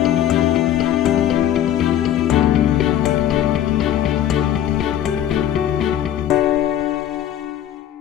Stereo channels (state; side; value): quieter; right; 11.1 dB